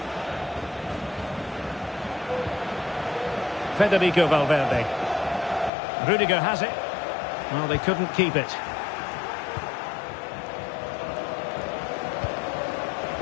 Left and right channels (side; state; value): right; drops out; at 5.7 s